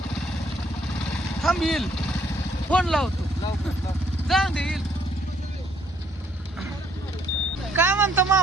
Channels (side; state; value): both; normal; correlation 0.67